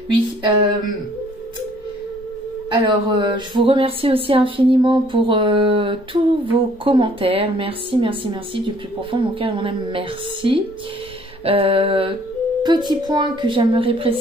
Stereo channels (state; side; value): normal; both; correlation 0.60